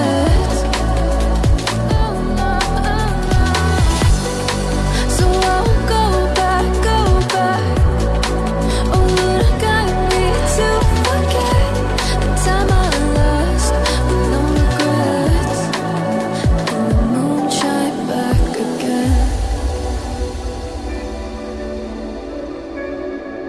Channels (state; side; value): identical; both; correlation 1.00